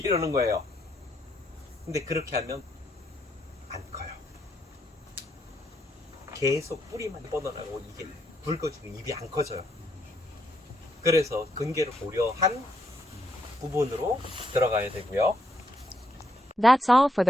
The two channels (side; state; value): both; normal; correlation 0.76